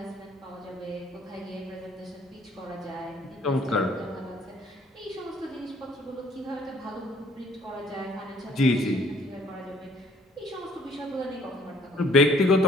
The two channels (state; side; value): normal; both; correlation 0.60